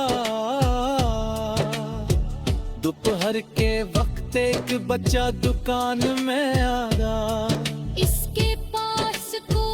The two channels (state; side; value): identical; both; correlation 1.00